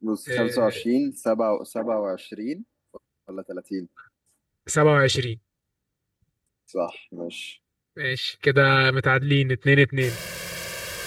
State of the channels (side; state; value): both; identical; correlation 1.00